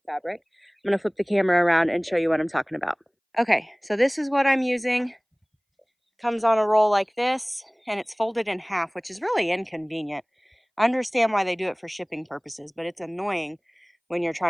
fabric. I'm gonna flip the camera around and show you what I'm talking about. Okay, so this is what I'm using. Comes on a roll like this, and it's folded in half, which is really inconvenient. I understand why they do it for shipping purposes, but it's annoying when you're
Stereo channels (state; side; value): identical; both; correlation 1.00